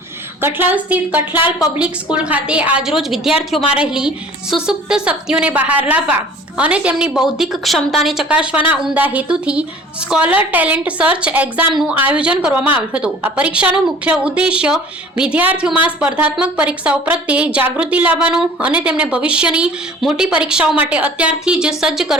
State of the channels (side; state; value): both; normal; correlation 0.47